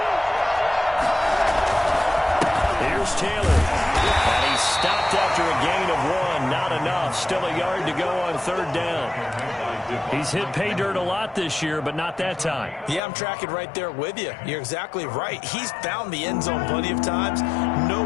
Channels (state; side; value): drops out; right; at 13.0 s